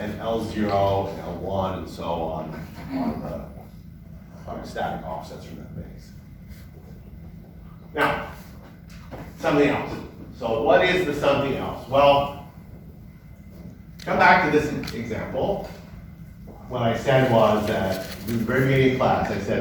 and L0 and L1 and so on are static offsets from that base. Now, something else. So what is the something else? Well, come back to this example. What I said was that in the very beginning of class, I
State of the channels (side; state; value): both; identical; correlation 1.00